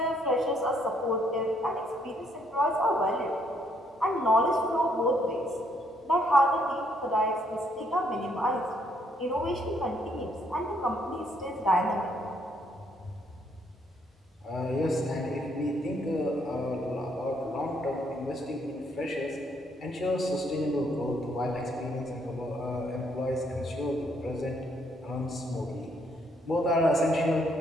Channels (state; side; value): normal; both; correlation 0.70